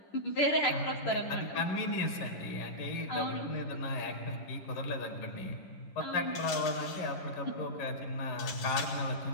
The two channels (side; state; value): right; late; 11 ms